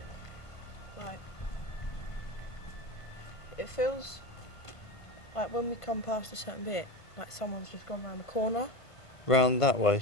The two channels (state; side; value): late; right; 1.5 ms